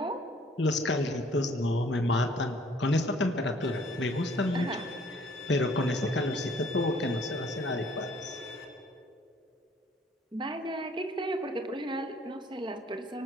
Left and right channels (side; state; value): both; normal; correlation 0.59